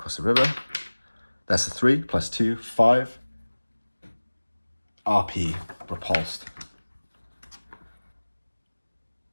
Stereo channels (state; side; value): inverted; both; correlation -1.00